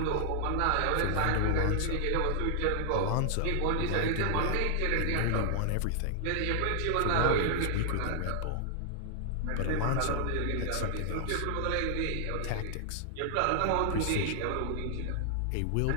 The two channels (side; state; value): both; different; correlation 0.00